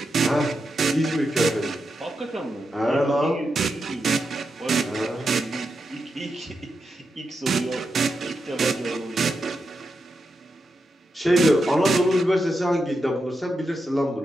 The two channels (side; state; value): both; normal; correlation 0.86